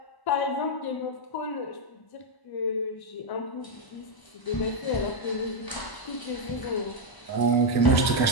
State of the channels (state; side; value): late; right; 1.0 ms